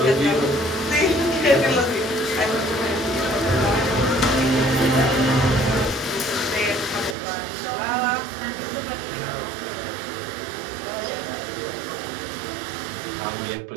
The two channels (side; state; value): left; drops out; at 7.2 s